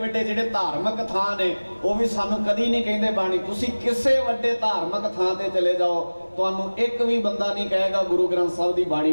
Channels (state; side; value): inverted; both; correlation -1.00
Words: जिहड़े धार्मिक थां ने वो भी सानू कदी नहीं कहते बाणी तुसी किसे वड्डे धार्मिक थां ते चले जाओ, तुहानू एक भी बंदा नहीं कहेगा गुरु ग्रंथ साहब की बाणी